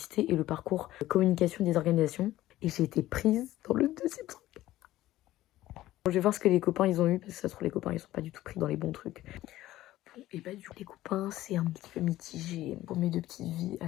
et le parcours communication des organisations. Et j'ai été prise dans le 2e truc. Je vais voir ce que les copains ils ont eu, parce que ça se trouve les copains ils sont pas du tout pris dans les bons trucs. Bon, et bah du coup les copains c'est un petit peu mitigé. Pour mes 2 petites vies,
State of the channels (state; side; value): quieter; right; 15.3 dB